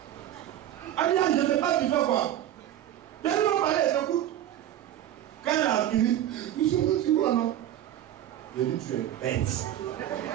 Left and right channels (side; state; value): left; quieter; 11.9 dB